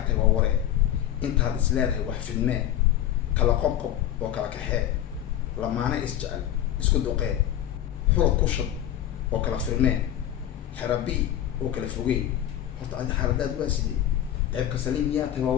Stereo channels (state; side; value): quieter; right; 11.7 dB